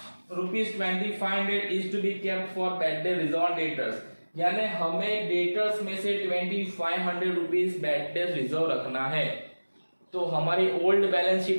₹2500 is to be kept for bad debt reserve debtors. यानी हमें डेटर्स में से ₹2500 बैड डेट रिजर्व रखना है. तो हमारी ओल्ड बैलेंस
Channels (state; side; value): inverted; both; correlation -1.00